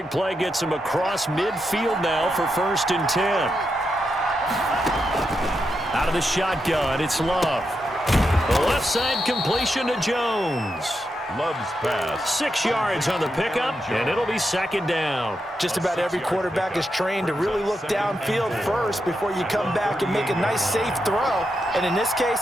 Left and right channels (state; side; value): normal; both; correlation 0.85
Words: play gets him across midfield now for 1st and 10. Out of the shotgun, it's Love. The left side completion to Jones. Love's pass. 6 yards on the pickup, and it'll be 2nd down. Just about every quarterback is trained to really look downfield first before you come back and make a nice, safe throw. And in this